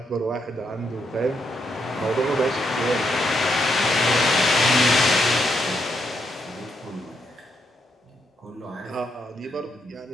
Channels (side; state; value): both; normal; correlation 0.79